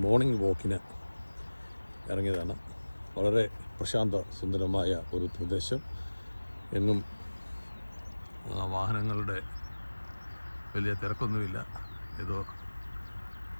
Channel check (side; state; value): both; inverted; correlation -1.00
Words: മോർണിംഗ് വാക്കിന് ഇറങ്ങിയതാണ്. വളരെ പ്രശാന്ത സുന്ദരമായ ഒരു പ്രദേശം. എങ്ങും വാഹനങ്ങളുടെ വലിയ തിരക്കൊന്നുമില്ല. ഏതോ